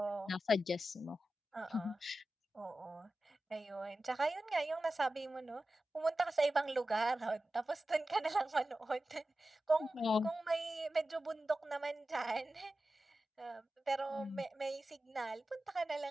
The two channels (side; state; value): both; normal; correlation 0.93